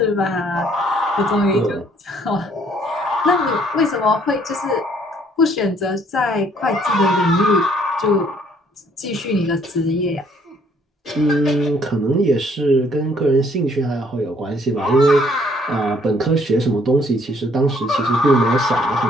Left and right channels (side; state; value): both; normal; correlation 0.63